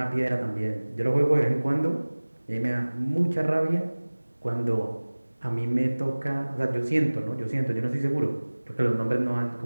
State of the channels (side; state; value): both; inverted; correlation -1.00